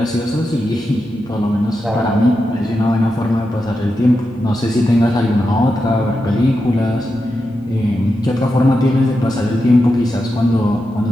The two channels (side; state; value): both; normal; correlation 0.88